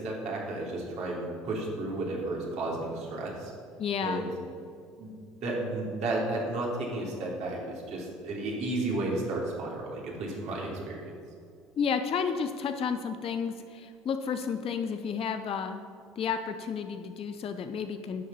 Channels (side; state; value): both; normal; correlation 0.51